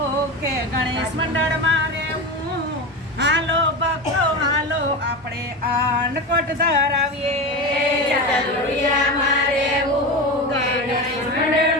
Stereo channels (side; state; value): both; normal; correlation 0.22